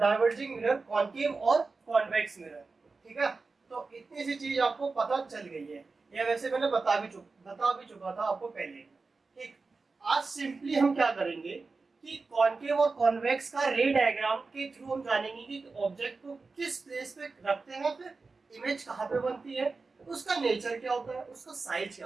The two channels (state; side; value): quieter; left; 4.1 dB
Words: mirror, concave और कॉन्वेक्स मिरर, ठीक है। तो इतनी सी चीज आपको पता चल गई है, या वैसे मैंने बता भी चुका था आपको पहले, ठीक। आज सिंपली हम क्या करेंगे कि कॉन्केव और कॉन्वेक्स का रे डायग्राम के थ्रू हम जानेंगे कि ऑब्जेक्ट को किस प्लेस पे रखते हैं, फिर इमेज कहाँ पे बनती है, उसका नेचर क्या होता है, उसका साइज क्या